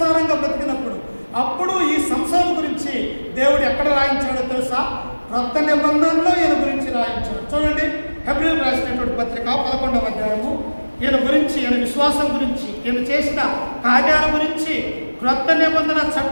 బ్రతికినప్పుడు. అప్పుడు ఈ సంసోను గురించి దేవుడు ఎక్కడ రాయించాడో తెలుసా? క్రొత్త నిబంధనలో ఈయన గురించి రాయించాడు. చూడండి, హెబ్రీయులకు రాసినటువంటి పత్రిక 11వ అధ్యాయము ఈయన గురించి, ఈయన విశ్వాసం గురించి, ఈయన చేసిన కార్యాల గురించి క్రొత్త నిబంధన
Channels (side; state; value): both; inverted; correlation -1.00